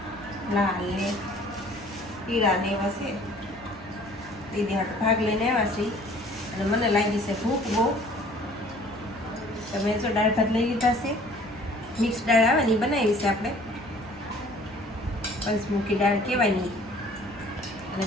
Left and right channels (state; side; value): normal; both; correlation 0.52